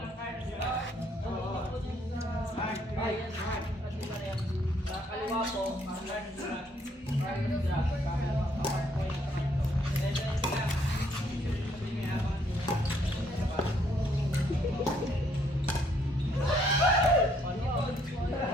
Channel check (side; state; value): both; normal; correlation 0.68